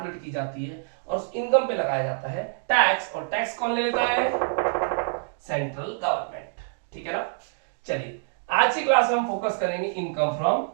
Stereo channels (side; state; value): left; silent; digital silence